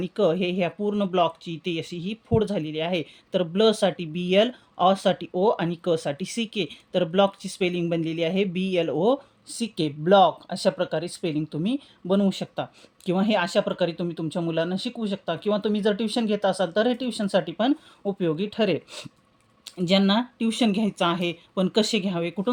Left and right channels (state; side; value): identical; both; correlation 1.00